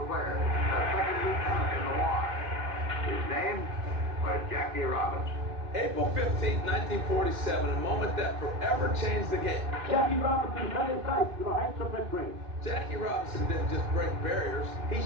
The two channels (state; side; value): late; left; 2.6 ms